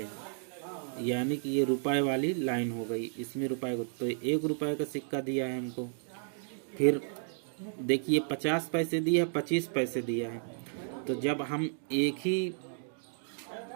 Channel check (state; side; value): silent; left; digital silence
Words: यानी कि ये रुपए वाली लाइन हो गई, इसमें रुपए को तो 1 रुपए का सिक्का दिया है हमको। फिर देखिए 50 पैसे दिया है, 25 पैसे दिया है। तो जब हम एक